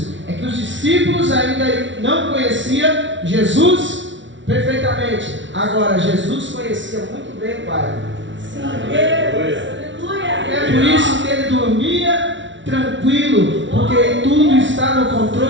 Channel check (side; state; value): left; late; 0.55 ms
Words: É que os discípulos ainda não conheciam Jesus perfeitamente. Agora Jesus conhecia muito bem o Pai. É por isso que ele dormia tranquilo, porque tudo está no